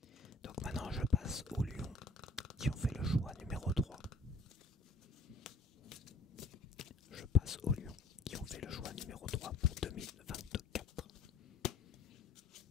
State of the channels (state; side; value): quieter; right; 3.3 dB